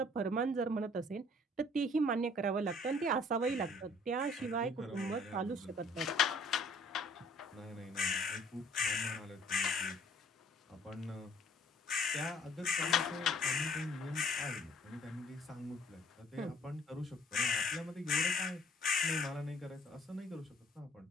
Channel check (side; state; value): both; normal; correlation 0.57